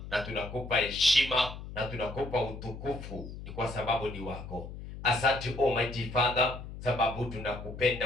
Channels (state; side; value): noise; left; hum, 11 dB below the sound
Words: na tunakupa heshima na tunakupa utukufu, ni kwa sababu ni wako. Asante Almighty Father, sababu